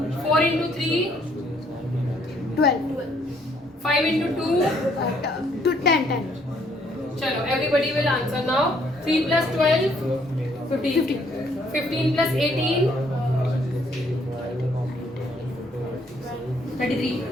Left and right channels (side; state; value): both; normal; correlation 0.66